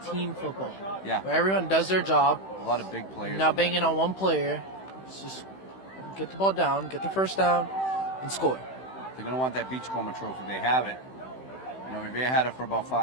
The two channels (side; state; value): right; late; 16 ms